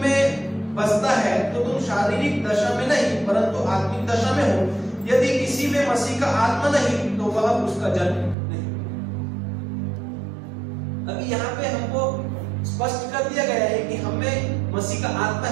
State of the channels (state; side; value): drops out; left; at 8.3 s